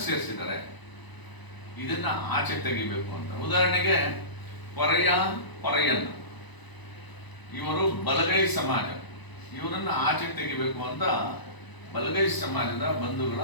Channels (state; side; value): late; right; 1.0 ms